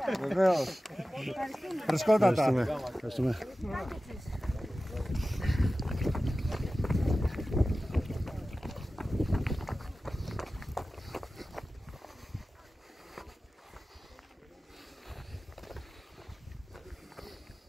Βεβαίως. Φρεσκότατα. Ευχαριστούμε.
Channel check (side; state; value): both; normal; correlation 0.95